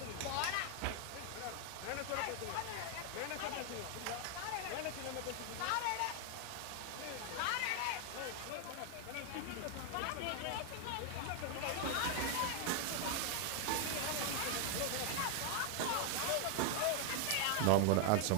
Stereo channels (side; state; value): both; different; correlation 0.00